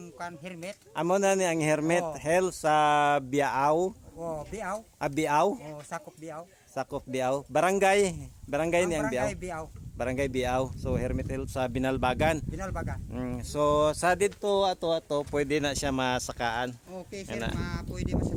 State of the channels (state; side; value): identical; both; correlation 1.00